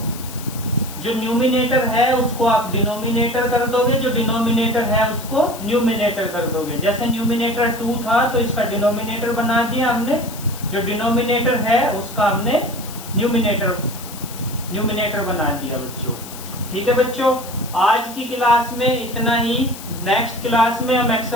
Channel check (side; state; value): left; noise; hiss, 14 dB below the sound